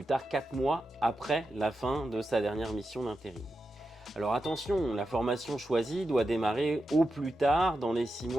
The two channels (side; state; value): both; normal; correlation 0.89